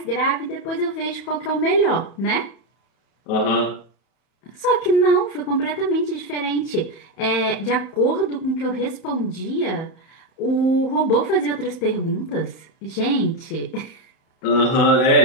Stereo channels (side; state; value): right; late; 31 ms